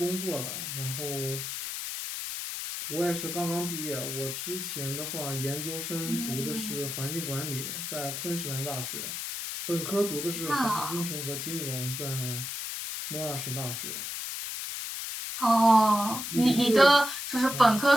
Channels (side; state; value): left; noise; hiss, 5 dB below the sound